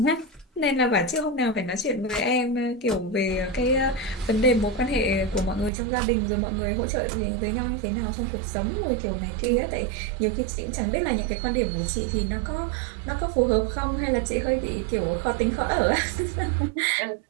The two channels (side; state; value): left; drops out; at 5.7 s